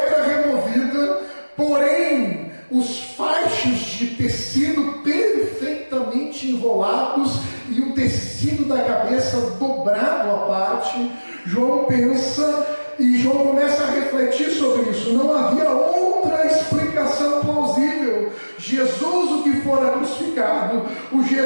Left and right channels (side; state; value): both; inverted; correlation -1.00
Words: removida, porém os faixos de tecido perfeitamente enrolados e o tecido da cabeça dobrado à parte. João pensa e João começa a refletir sobre isso. Não havia outra explicação plausível. Jesus, o que fora crucificado, o